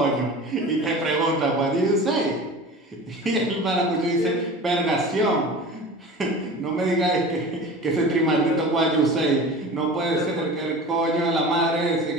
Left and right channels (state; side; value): normal; both; correlation 0.36